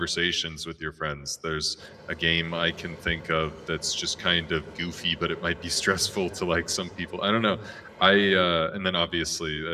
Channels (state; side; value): identical; both; correlation 1.00